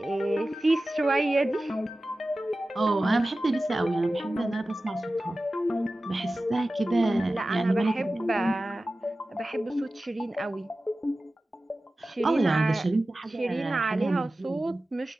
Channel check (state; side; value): normal; both; correlation 0.95